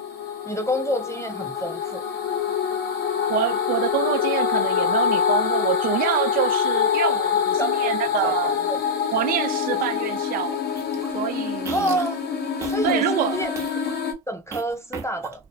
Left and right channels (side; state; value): both; normal; correlation -0.04